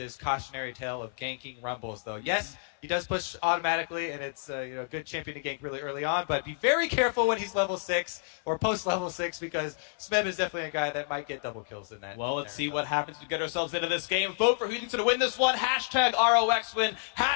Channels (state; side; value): silent; right; 58 dB below the other